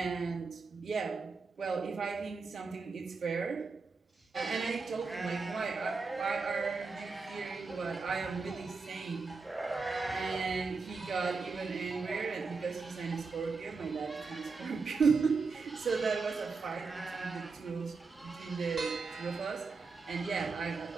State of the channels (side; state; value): left; quieter; 4.5 dB